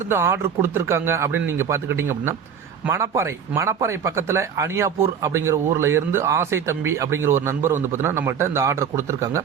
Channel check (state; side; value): quieter; left; 7.6 dB